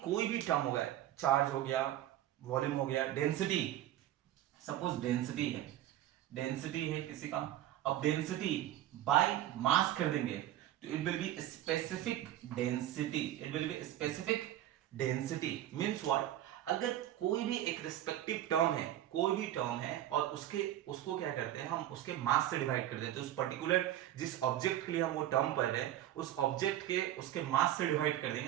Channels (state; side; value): quieter; left; 12.9 dB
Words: कोई भी टर्म होगा, चार्ज हो गया, वॉल्यूम हो गया, डेंसिटी, सपोज डेंसिटी है किसी का, अब डेंसिटी बाय मास कर देंगे तो it will be specific density, means what, अगर कोई भी एक रिस्पेक्टिव टर्म है, और उसको क्या करते हैं हम, उसके मास से डिवाइड कर देते हैं, उस पर्टिकुलर जिस ऑब्जेक्ट के लिए हम वो टर्म पढ़ रहे हैं उस ऑब्जेक्ट के उसके मास से डिवाइड कर